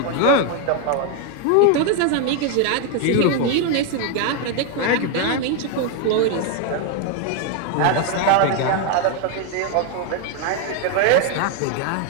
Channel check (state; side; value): different; both; correlation 0.01